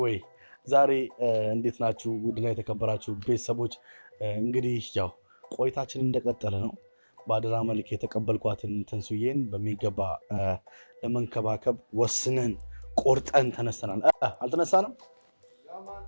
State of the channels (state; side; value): inverted; both; correlation -1.00